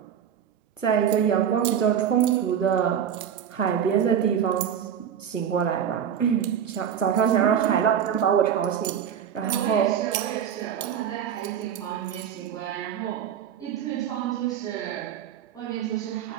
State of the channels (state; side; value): quieter; left; 8.8 dB